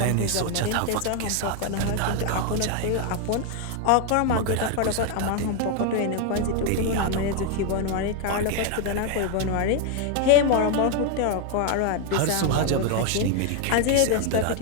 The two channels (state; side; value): different; both; correlation 0.01